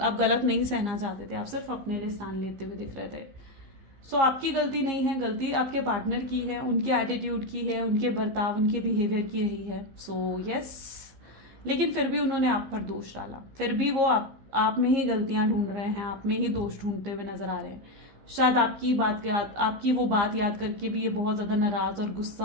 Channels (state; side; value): late; left; 15 ms